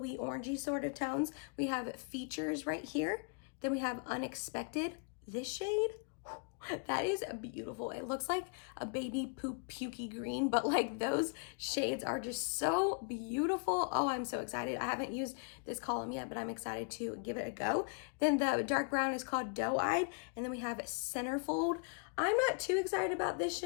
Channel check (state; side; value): quieter; right; 38.4 dB